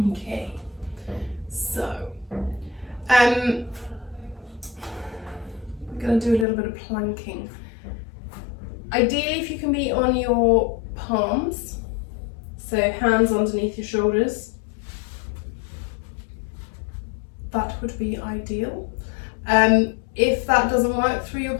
so we're going to do a little bit of planking. Ideally, if you can be on your palms, so hands underneath your shoulders, that would be ideal. If that doesn't work through your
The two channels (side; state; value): right; drops out; at 6.5 s